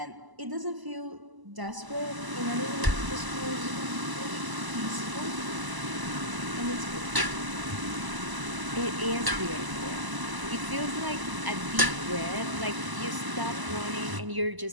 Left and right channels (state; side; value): late; left; 1.0 ms